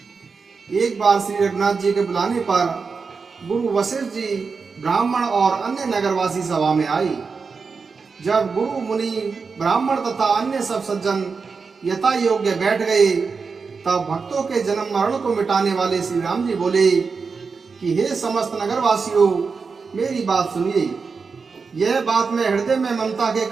एक बार श्री रघुनाथ जी के बुलाने पर गुरु वशिष्ठ जी ब्राह्मण और अन्य नगरवासी सभा में आई। जब गुरु मुनि ब्राह्मण तथा अन्य सब सज्जन यथा योग्य बैठ गए, तब भक्तों के जन्म मरण को मिटाने वाले श्री राम जी बोले कि हे समस्त नगरवासियों, मेरी बात सुनिए। यह बात मैं हृदय में ममता के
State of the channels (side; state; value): left; quieter; 5.0 dB